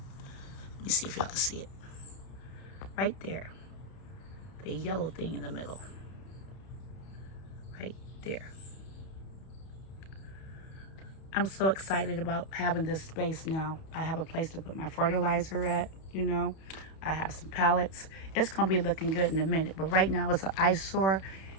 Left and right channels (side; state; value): right; late; 31 ms